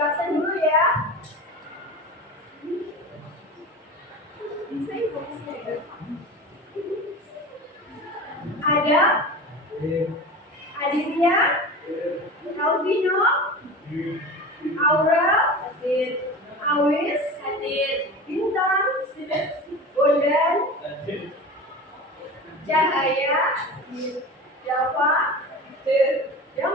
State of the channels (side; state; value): both; normal; correlation 0.32